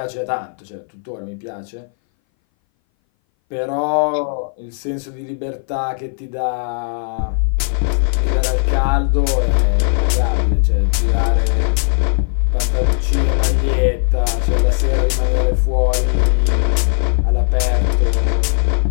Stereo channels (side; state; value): right; silent; 61 dB below the other